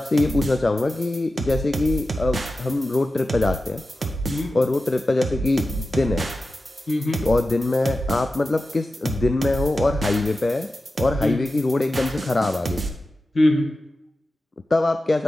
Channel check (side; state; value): both; normal; correlation 0.93